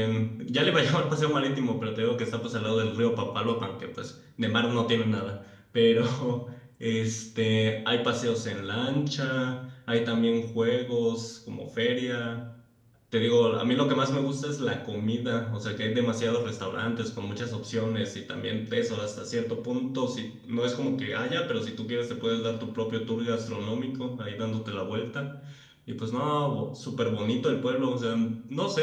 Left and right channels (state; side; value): identical; both; correlation 1.00